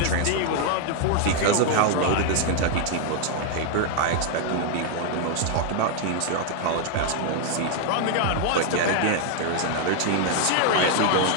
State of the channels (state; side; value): different; both; correlation 0.00